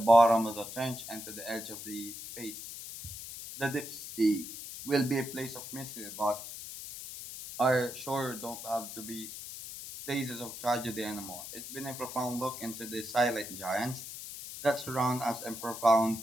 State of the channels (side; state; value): left; noise; hiss, 10 dB below the sound